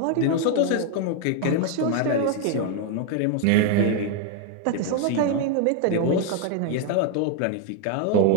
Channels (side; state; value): both; different; correlation 0.01